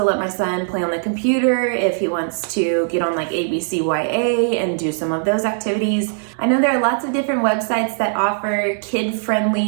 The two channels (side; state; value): left; silent; digital silence